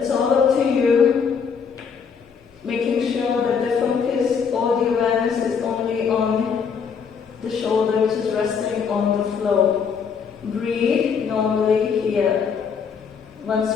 all up to you, making sure that the focus or the awareness is only on the shoulder, which is resting on the floor. Breathe normally here. Once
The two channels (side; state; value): right; quieter; 6.4 dB